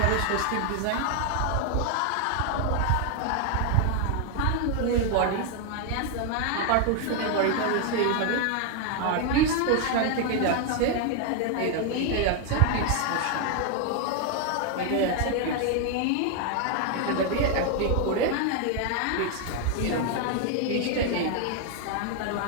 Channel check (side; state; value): both; different; correlation 0.00